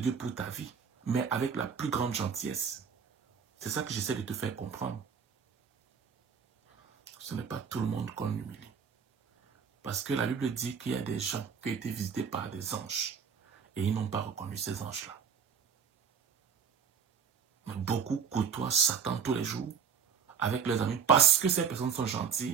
pour ta vie, mais avec la plus grande gentillesse. C'est ça que j'essaie de te faire comprendre. Ce n'est pas tout le monde qu'on humilie. Parce que la Bible dit qu'il y a des gens qui ont été visités par des anges et ils n'ont pas reconnu ces anges-là. Mais beaucoup côtoient Satan tous les jours avec leurs amis parce que ces personnes sont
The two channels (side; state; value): left; quieter; 6.7 dB